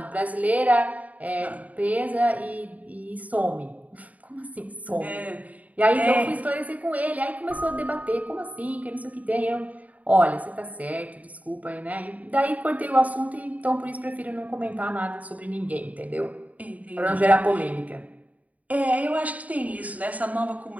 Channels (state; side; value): late; left; 0.072 ms